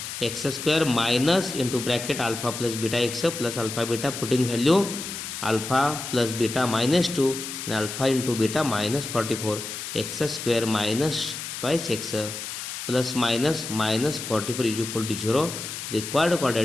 x square minus into bracket alpha plus beta x plus alpha beta, putting value alpha plus beta minus 2 and alpha into beta minus 44, x square minus twice x plus minus minus 44 is equal to 0. Required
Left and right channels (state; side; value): noise; left; hiss, 7 dB below the sound